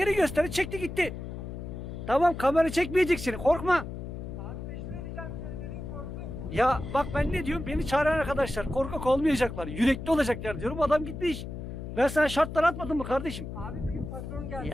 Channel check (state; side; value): noise; left; hum, 8 dB below the sound